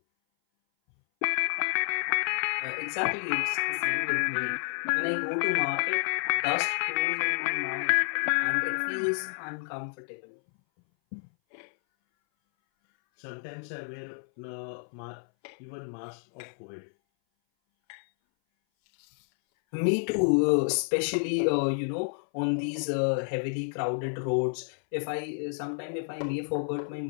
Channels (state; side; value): silent; right; 58 dB below the other